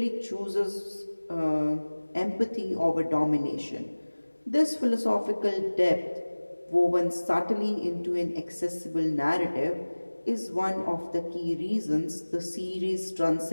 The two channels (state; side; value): inverted; both; correlation -1.00